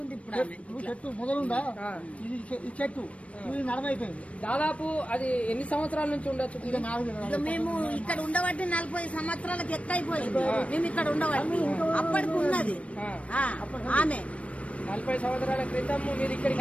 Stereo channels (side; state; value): right; late; 0.064 ms